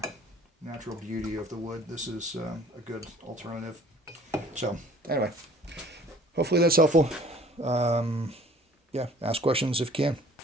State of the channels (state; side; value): normal; both; correlation 0.52